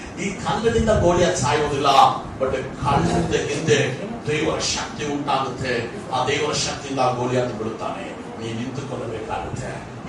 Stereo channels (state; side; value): identical; both; correlation 1.00